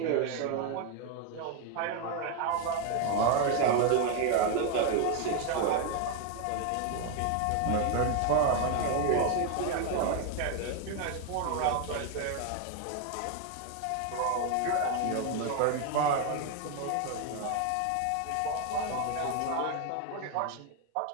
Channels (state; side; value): different; both; correlation 0.01